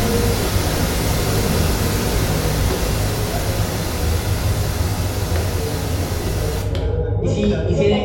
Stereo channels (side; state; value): both; identical; correlation 1.00